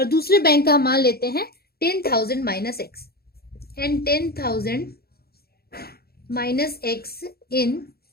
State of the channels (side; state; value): right; late; 0.45 ms